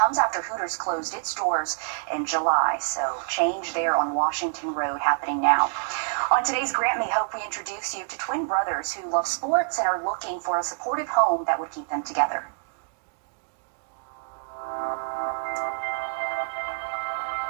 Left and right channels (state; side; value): silent; left; digital silence